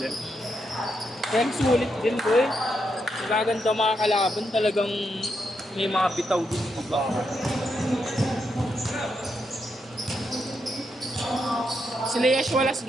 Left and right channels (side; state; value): both; normal; correlation 0.81